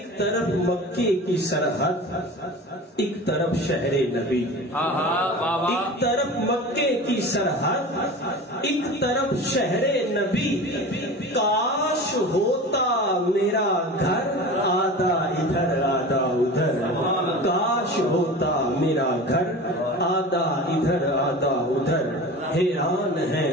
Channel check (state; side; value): normal; both; correlation 0.34